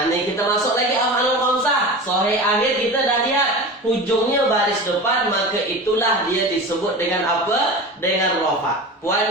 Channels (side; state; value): both; normal; correlation 0.31